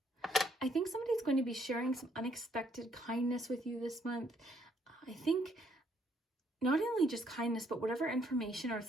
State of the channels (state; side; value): normal; both; correlation 0.69